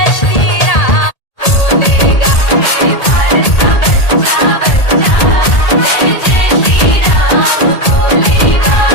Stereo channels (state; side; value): late; right; 1.8 ms